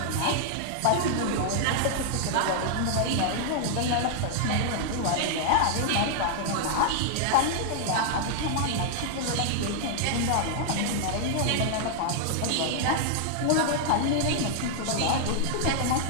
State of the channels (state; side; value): different; both; correlation -0.01